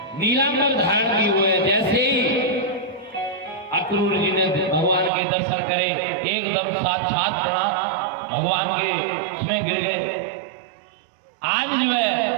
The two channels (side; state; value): left; drops out; at 5.1 s